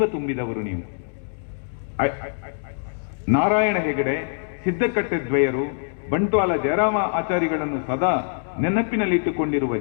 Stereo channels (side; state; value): right; silent; 63 dB below the other